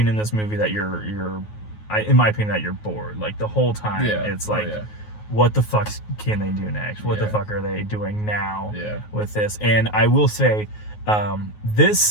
in this movie that you're in my opinion, that you're bored. Like the whole time, it's like, what the fuck can they do next? What the fuck are they doing now with this? And I will say,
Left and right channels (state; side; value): late; right; 9.4 ms